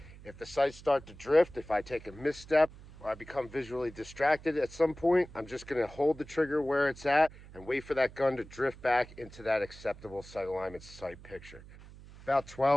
If the sights start to drift, if I take a misstep, or I become visually distracted at some point, I'm just going to hold the trigger where it's at and wait for that gun to drift back into that acceptable sight alignment sight picture. About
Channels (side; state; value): right; noise; hum, 18 dB below the sound